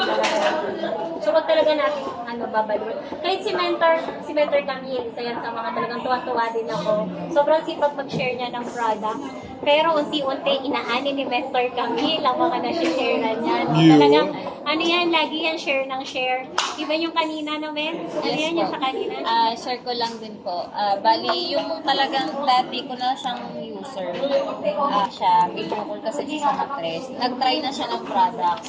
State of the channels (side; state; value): both; identical; correlation 1.00